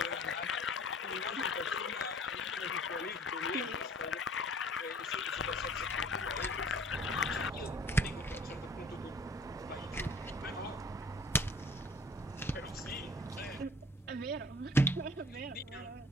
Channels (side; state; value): both; normal; correlation 0.51